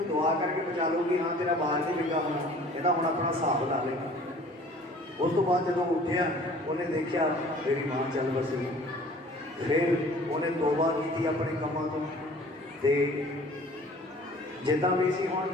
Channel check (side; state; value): both; normal; correlation 0.49